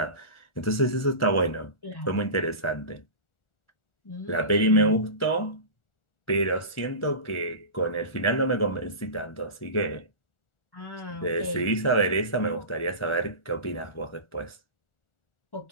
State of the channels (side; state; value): right; late; 1.4 ms